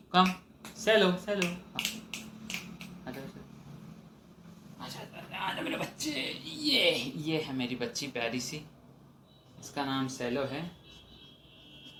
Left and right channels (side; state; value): both; identical; correlation 1.00